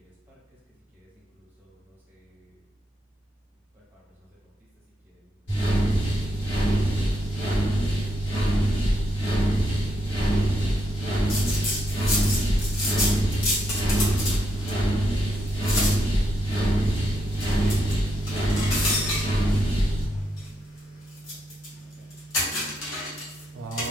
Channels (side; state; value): both; normal; correlation 0.80